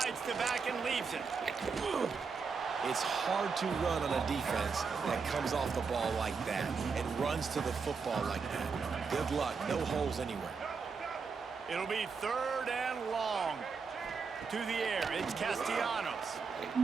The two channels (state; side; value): quieter; left; 5.2 dB